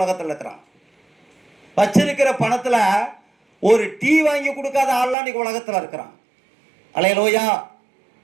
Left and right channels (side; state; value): left; drops out; at 5.2 s